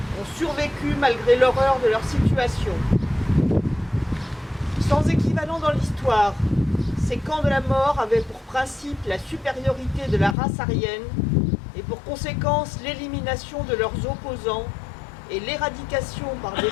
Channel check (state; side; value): drops out; right; at 10.4 s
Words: ont survécu malgré l'horreur de leur situation. Sans équivalent dans l'histoire, ces camps de la mort avaient pour principe la supériorité de la race aryenne et pour conséquence l'élimination de leurs opposants et l'éradication par des